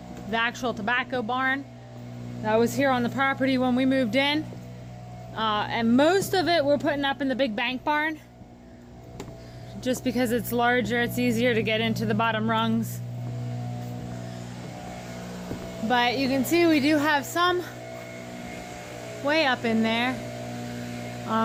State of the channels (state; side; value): identical; both; correlation 1.00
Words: actual tobacco barn that was here on the property when we moved in. And most of it we're putting up in the big bank barn. Just because it's larger, it's easier to get into the bottom rungs. But you can see we do have some way up in there.